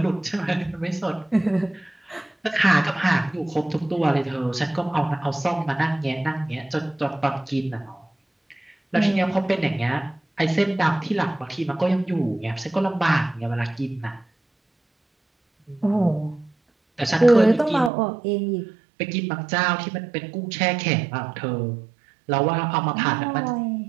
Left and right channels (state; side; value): drops out; left; at 17.9 s